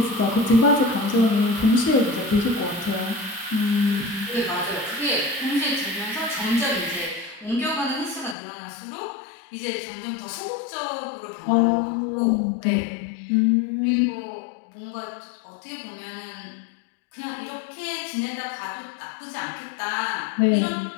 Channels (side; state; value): right; drops out; at 8.3 s